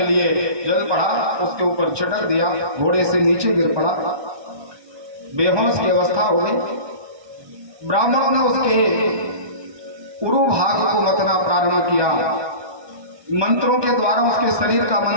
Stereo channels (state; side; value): late; left; 1.2 ms